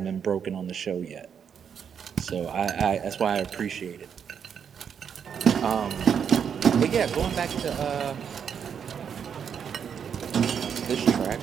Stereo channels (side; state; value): left; quieter; 7.6 dB